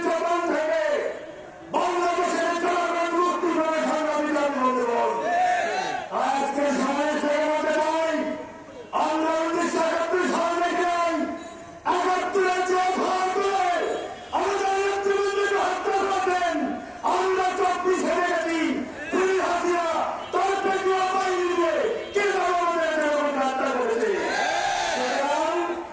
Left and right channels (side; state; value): both; identical; correlation 1.00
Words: থেকে বাংলাদেশের জনগণ মুক্তি করে সংগ্রামী জাতি বন্ধুগণ, আজকে সময় থেকে বলতে চাই আমরা 1971 সাল থেকে 71-এর যে ভাগ করে আমাদের নেতৃবৃন্দকে হত্যা করেছেন, আমরা 24-এ দেখেছি পুলিশ হাসিনা তার পেটুয়া বাহিনী দিয়ে কিভাবে আমাদের জনগণকে হত্যা করেছে। সুতরাং